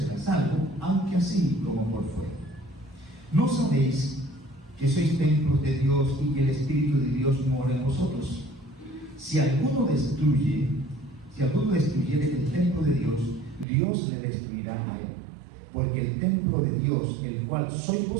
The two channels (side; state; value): left; drops out; at 13.7 s